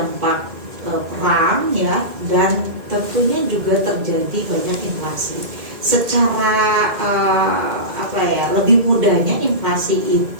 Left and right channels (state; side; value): late; left; 2.1 ms